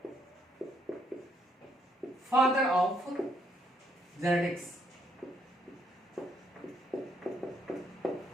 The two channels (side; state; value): both; normal; correlation 0.73